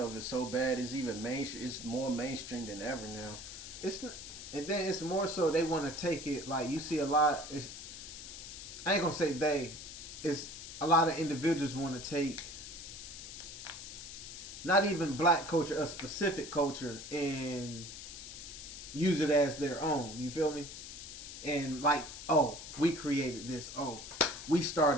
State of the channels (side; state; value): left; noise; hiss, 11 dB below the sound